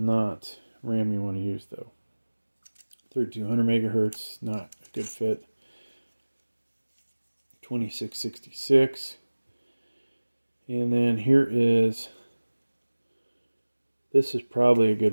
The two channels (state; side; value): inverted; both; correlation -1.00